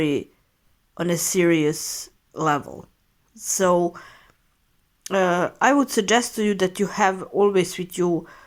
on a serious level. So I would suggest to you that you have always with you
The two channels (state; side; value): identical; both; correlation 1.00